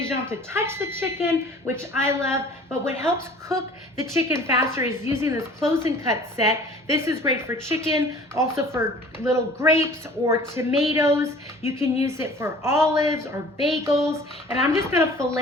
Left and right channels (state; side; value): normal; both; correlation 0.48